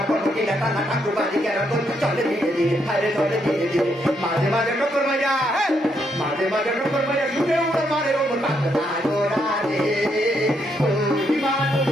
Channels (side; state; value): both; normal; correlation 0.76